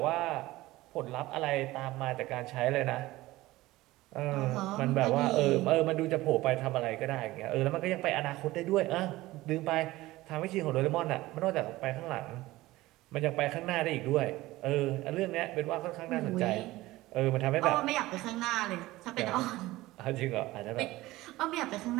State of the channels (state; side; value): quieter; left; 18.1 dB